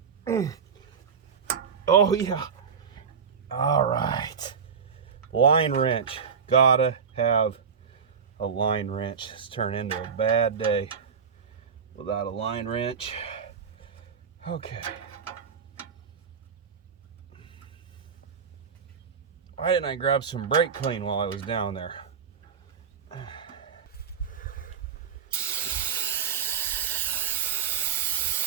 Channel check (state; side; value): quieter; left; 6.5 dB